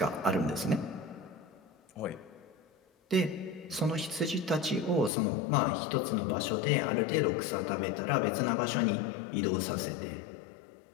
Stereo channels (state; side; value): drops out; right; at 5.1 s